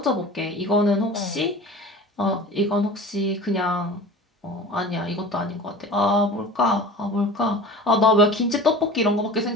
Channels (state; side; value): normal; both; correlation 0.38